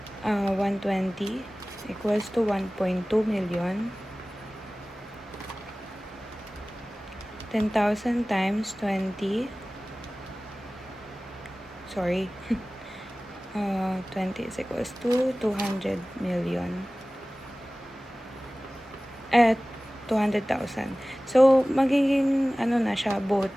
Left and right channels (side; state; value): both; normal; correlation 0.98